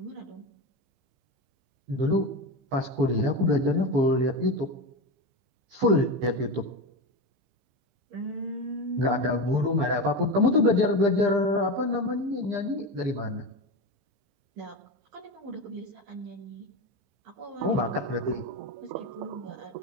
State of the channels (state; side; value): late; left; 15 ms